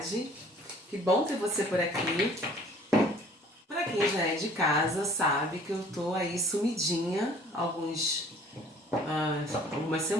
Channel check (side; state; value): both; normal; correlation 0.53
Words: Que bom ter você por aqui. Para quem já é de casa, sabe que eu tô aí sumidinha algumas